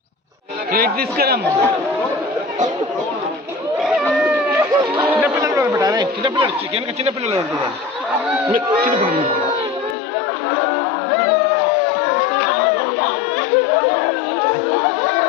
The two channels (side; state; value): right; drops out; at 10.0 s